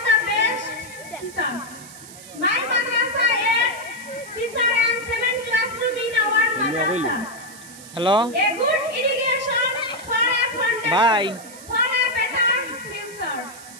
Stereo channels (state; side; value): noise; right; hiss, 17 dB below the sound